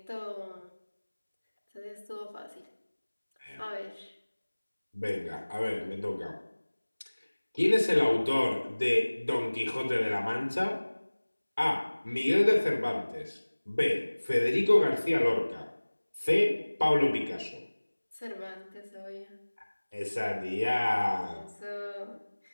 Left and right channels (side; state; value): both; inverted; correlation -1.00